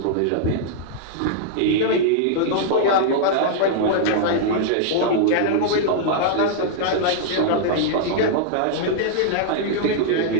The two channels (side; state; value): both; different; correlation -0.01